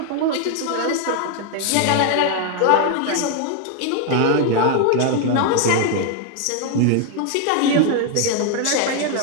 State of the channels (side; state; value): both; different; correlation 0.00